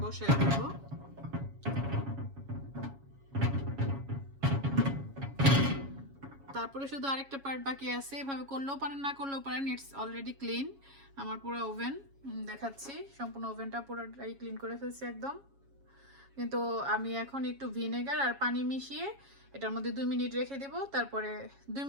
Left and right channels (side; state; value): left; late; 7.3 ms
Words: বসায় দেব। তারপরে শুধু আরেকটা পার্ট বাকি আছে, এভাবে করলেও পারেন না করলেও পারেন, ইটস অলরেডি ক্লিন। আমার পুরো ওভেন দেখাচ্ছি, সম্পূর্ণ ওভেনটা পুরোটাই ক্লিন করে ফেলছি একদম। কিন্তু আমি এখন একটু ভিনেগার আর পানি মিশিয়ে এটার মধ্যে 2 মিনিট রেখে দেব, তারপরে 2